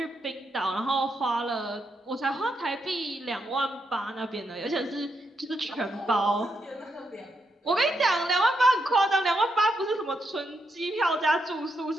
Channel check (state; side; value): normal; both; correlation 0.81